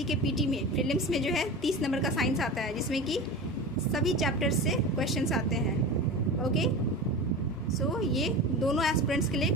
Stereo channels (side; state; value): both; normal; correlation 0.29